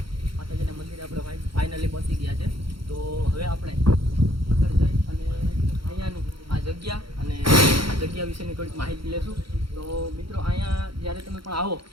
માતાજીના મંદિરે આપણે ફાઇનલી પહોંચી ગયા છે. તો હવે આપણે આગળ જઈ અને અહીંયાનું આ જગ્યા અને આ જગ્યા વિશેની થોડીક માહિતી લેશું. તો મિત્રો અહીંયા જ્યારે તમે પણ આવો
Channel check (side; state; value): left; late; 0.74 ms